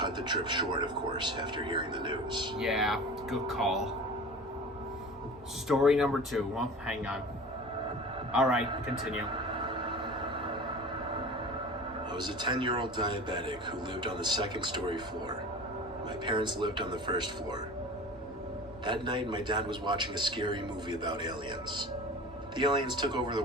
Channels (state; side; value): normal; both; correlation 0.37